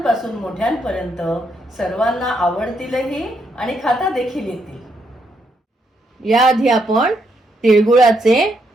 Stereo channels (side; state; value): both; normal; correlation 0.77